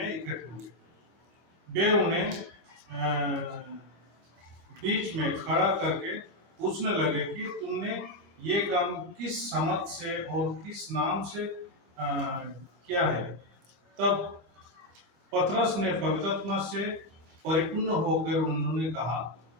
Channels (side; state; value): left; late; 24 ms